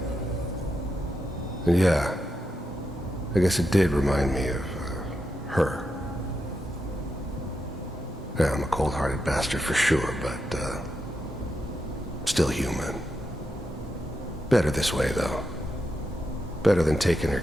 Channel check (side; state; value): both; normal; correlation 0.85